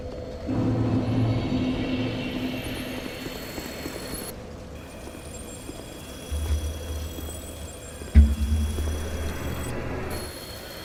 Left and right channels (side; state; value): both; identical; correlation 1.00